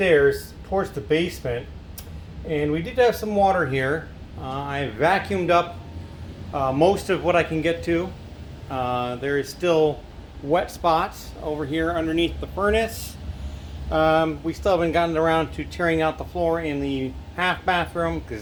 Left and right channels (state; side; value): identical; both; correlation 1.00